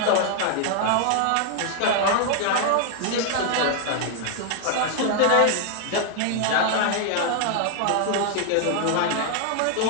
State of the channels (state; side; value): different; both; correlation 0.00